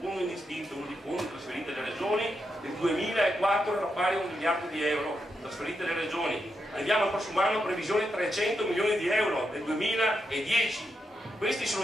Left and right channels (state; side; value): normal; both; correlation 0.84